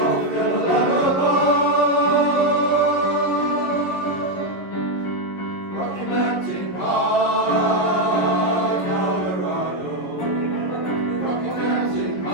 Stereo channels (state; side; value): late; right; 11 ms